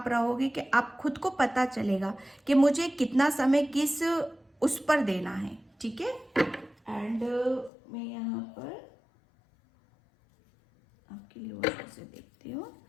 रहोगे कि आप खुद को पता चलेगा कि मुझे कितना समय किस उस पर देना है, ठीक है। एंड मैं यहाँ पर आपके लिए और से देखती हूँ।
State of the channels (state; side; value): drops out; right; at 7.7 s